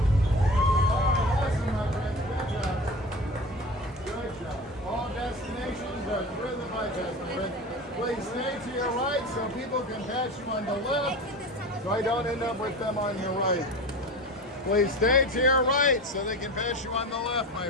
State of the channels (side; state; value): both; normal; correlation 0.32